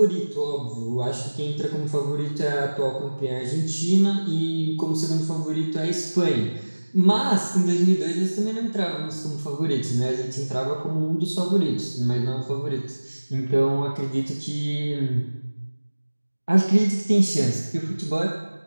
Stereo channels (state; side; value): inverted; both; correlation -1.00